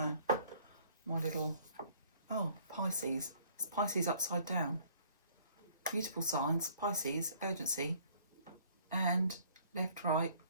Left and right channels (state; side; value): inverted; both; correlation -0.58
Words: my little, oh, Pisces. It's Pisces upside down. Mutable signs, Pisces, urgency, and left, right,